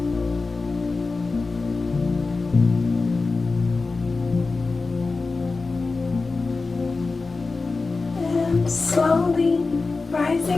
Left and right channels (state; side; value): quieter; right; 3.9 dB